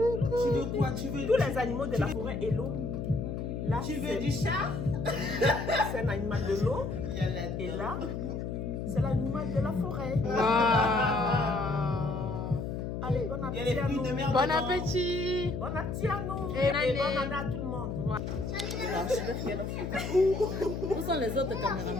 veux quoi? Tu veux tous les animaux de la forêt et l'eau. Là, tu veux du chat? C'est un animal de l'eau. Et là, c'est l'animal de la forêt. Allez, bon appétit à nous. Bon appétit! Bon appétit à nous. Et Et bonne année à tout le monde. Où sont les autres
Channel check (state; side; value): noise; left; hum, 4 dB below the sound